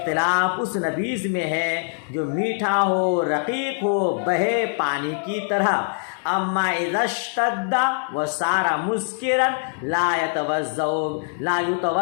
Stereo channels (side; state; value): right; silent; digital silence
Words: اس نبیذ میں ہے جو میٹھا ہو، رقیق ہو، بہے پانی کی طرح۔ اما اذا اشتد وصار مسکرا لا